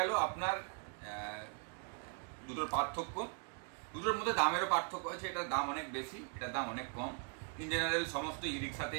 আপনার দুটোর পার্থক্য। দুটোর মধ্যে দামেরও পার্থক্য আছে, এটার দাম অনেক বেশি, এটার দাম অনেক কম। ইন জেনারেল সমস্ত ই রিক্সাতে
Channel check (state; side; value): quieter; left; 39.3 dB